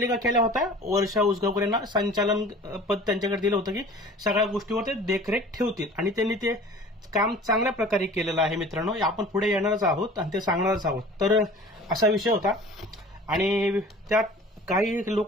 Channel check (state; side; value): normal; both; correlation 0.44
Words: केल्या होत्या वर्षा उसगावकर यांना संचालन पद त्यांच्याकडे दिलं होतं की सगळ्या गोष्टीवर ते देखरेख ठेवतील आणि त्यांनी ते काम चांगल्या प्रकारे केलेलं आहे मित्रांनो. आपण पुढे येणारच आहोत आणि ते सांगणारच आहोत. तर असा विषय होता आणि त्यात काही